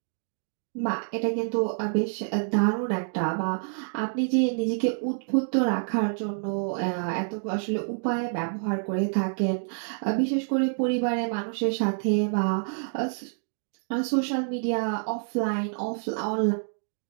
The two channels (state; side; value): silent; left; digital silence